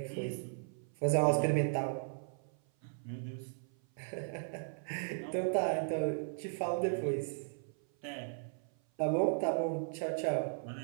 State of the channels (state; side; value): silent; left; 54 dB below the other